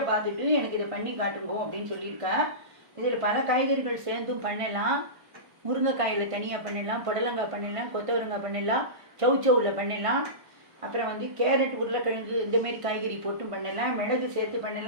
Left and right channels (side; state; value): left; late; 1.5 ms